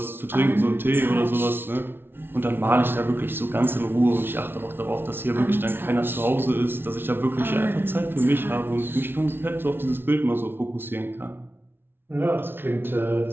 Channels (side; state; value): left; late; 0.11 ms